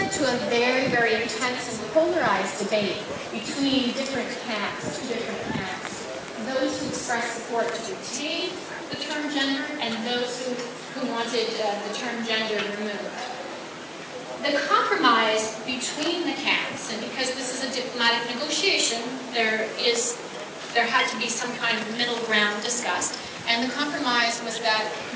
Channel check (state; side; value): identical; both; correlation 1.00